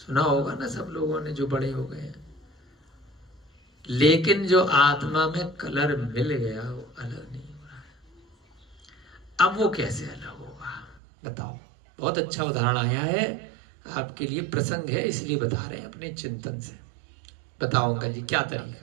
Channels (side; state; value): left; drops out; at 11.0 s